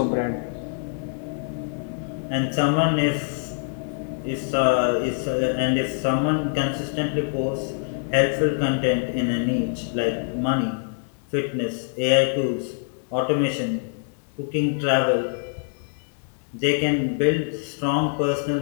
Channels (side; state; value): right; silent; 62 dB below the other